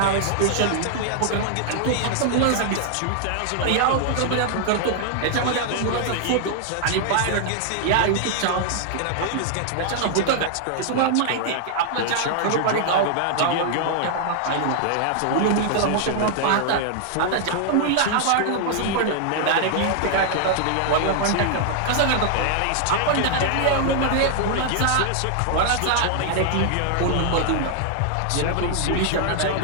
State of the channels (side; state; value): both; different; correlation 0.00